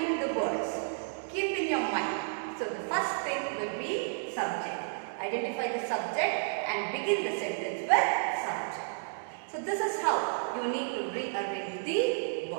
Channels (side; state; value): left; silent; digital silence